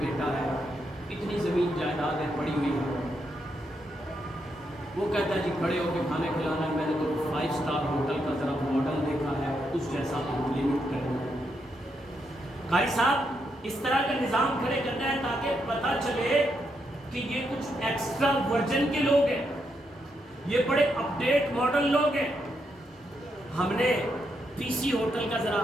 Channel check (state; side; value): normal; both; correlation 0.80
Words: بیٹا ہے، اتنی زمین جائیداد ہے پڑی ہوئی ہے۔ وہ کہتا ہے جی کھڑے ہو کے کھانے کھلانا ہے، میں نے تو 5 اسٹار ہوٹل کا ذرا ماڈل دیکھا ہے، اس جیسا تو لمٹ کرنا ہے۔ قاری صاحب اس طرح کا نظام کھڑے کرنا ہے تاکہ پتہ چلے کہ یہ کچھ ایکسٹرا ورجن کے لوگ ہیں، یہ بڑے اپڈیٹ ماڈل لوگ ہیں۔ ہم نے پی سی ہوٹل کا ذرا